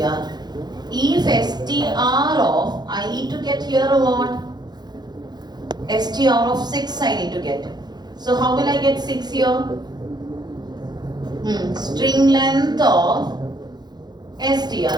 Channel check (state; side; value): late; left; 0.20 ms